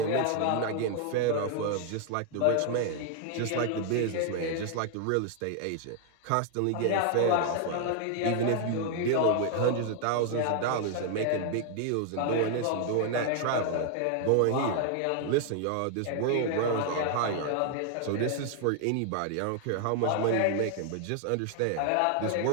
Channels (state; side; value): different; both; correlation 0.00